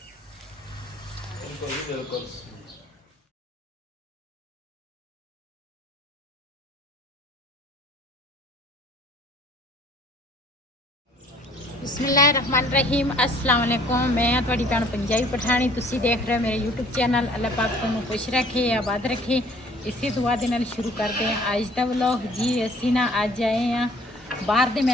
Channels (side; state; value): both; normal; correlation 0.55